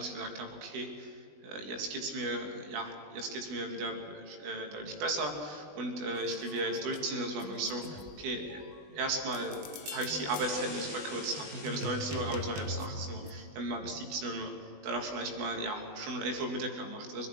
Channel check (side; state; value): left; late; 20 ms